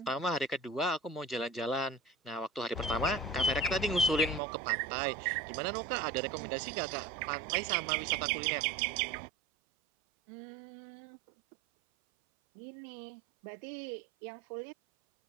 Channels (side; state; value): left; drops out; at 4.4 s